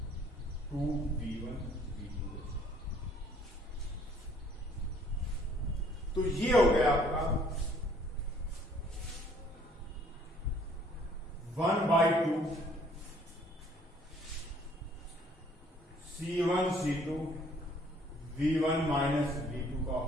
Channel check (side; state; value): both; normal; correlation 0.60